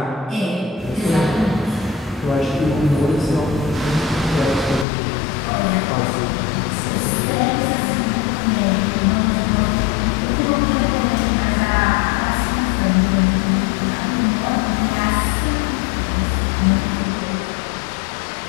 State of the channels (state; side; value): drops out; right; at 4.9 s